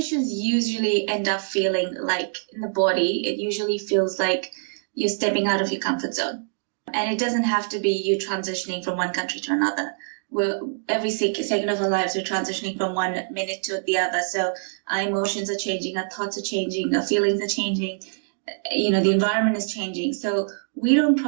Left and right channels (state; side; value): silent; left; digital silence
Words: usually end up feeling like, in the body, it usually feels like you're stepping out of your comfort zone. And it doesn't have to be you transitioning from one country to another. Every second of our lives, we're transitioning from one minute to the other. So our emotions are changing, our thoughts are changing, our feelings are changing, the environment is changing. So we don't